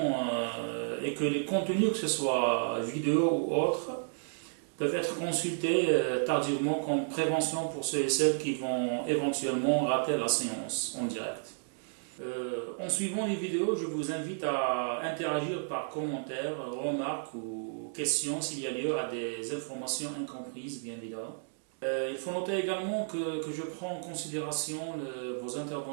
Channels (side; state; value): left; silent; digital silence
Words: est que les contenus, que ce soit vidéo ou autres, peuvent être consultés tardivement comme prévention pour ceux et celles qui vont éventuellement rater la séance en direct. En suivant les vidéos, je vous invite à interagir par commentaires, remarques ou questions s'il y a lieu à des informations incomprises, bien évidemment. Il faut noter également que je prends en considération vos